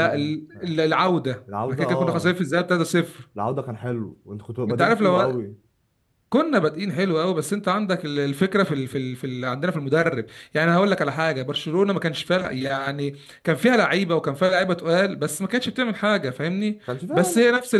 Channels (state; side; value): identical; both; correlation 1.00